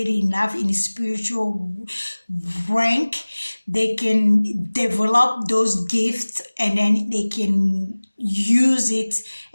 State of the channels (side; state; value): both; inverted; correlation -1.00